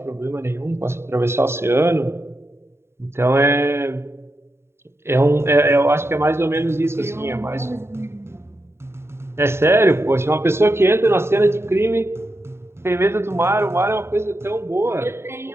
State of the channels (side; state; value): left; late; 0.12 ms